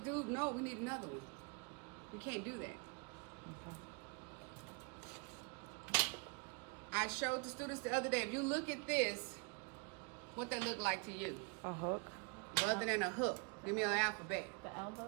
dude, no, we need another one. You can't do that. I showed the students the other day, if you look at this, what that look like to you? A hook. Other than a hook. Give me an alphabet. The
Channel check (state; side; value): quieter; left; 33.8 dB